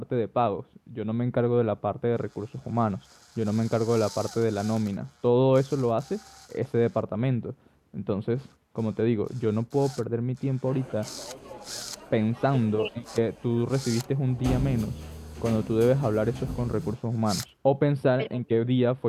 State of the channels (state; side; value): identical; both; correlation 1.00